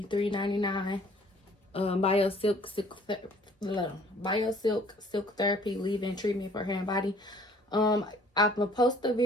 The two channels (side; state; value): both; normal; correlation 0.56